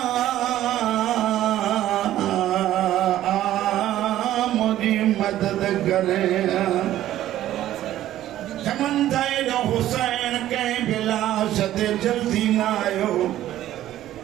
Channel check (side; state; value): left; quieter; 13.2 dB